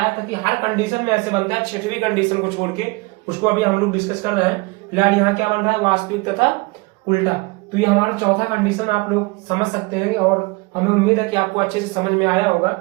था कि हर कंडीशन में ऐसे बनता है, छठवीं कंडीशन को छोड़ के, उसको अभी हम लोग डिस्कस कर रहे हैं। फिलहाल यहाँ क्या बन रहा है, वास्तविक तथा उल्टा। तो ये हमारा चौथा कंडीशन आप लोग समझ सकते हैं और हमें उम्मीद है कि आपको अच्छे से समझ में आया होगा।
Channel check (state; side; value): quieter; left; 25.4 dB